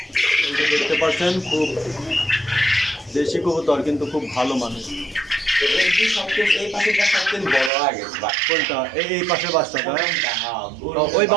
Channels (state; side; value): drops out; left; at 7.7 s